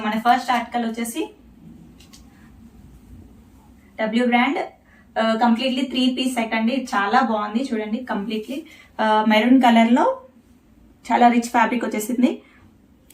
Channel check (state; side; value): identical; both; correlation 1.00